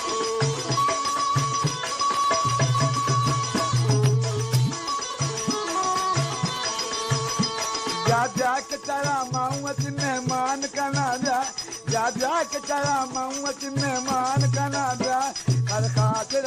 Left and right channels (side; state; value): both; identical; correlation 1.00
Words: जा के तेरा माऊत मेहमान कना जा के तेरा माऊत मेहमान कना जा हर खातिर